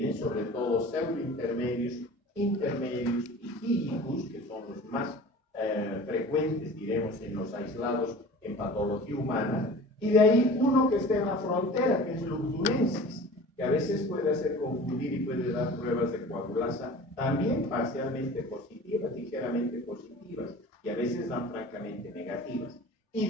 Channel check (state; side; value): normal; both; correlation 0.40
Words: sobre todo pseudointermedius, intermedius y filicus, que son los más frecuentes, diremos, en los aislados en patología humana, y de ahí uno que está en la frontera, que es lugdunensis, que a veces puede hacer confundir y puede dar pruebas de coagulasa también parcialmente positivas, ligeramente positivas, y a veces dan francamente negativas. Y